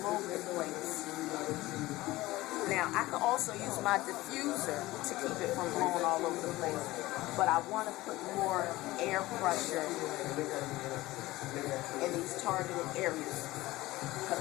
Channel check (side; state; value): right; quieter; 18.3 dB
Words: the place. Now, I can also use my diffuser to keep it from blowing all over the place, but I want to put more air pressure in these targeted areas because